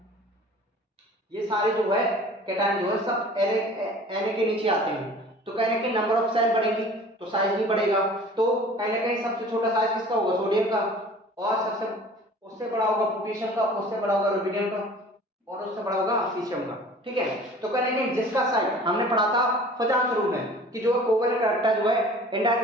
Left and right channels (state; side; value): normal; both; correlation 0.46